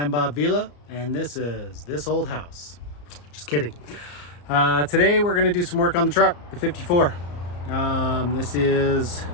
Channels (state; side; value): late; right; 34 ms